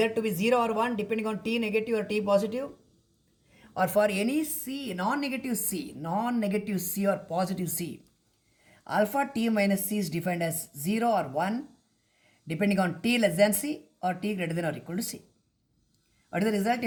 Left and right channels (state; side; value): identical; both; correlation 1.00